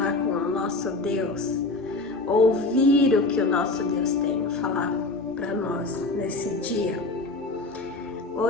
com o nosso Deus, ouvir o que o nosso Deus tem a falar para nós nesse dia.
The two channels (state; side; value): quieter; right; 3.2 dB